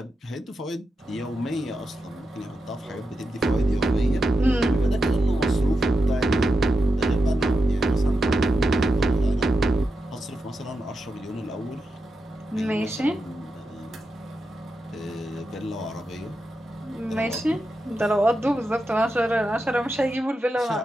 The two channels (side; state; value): both; normal; correlation 0.88